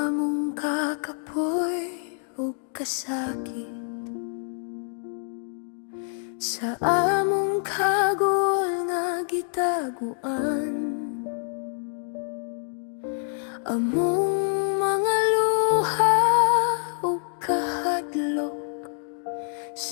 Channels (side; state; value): right; silent; digital silence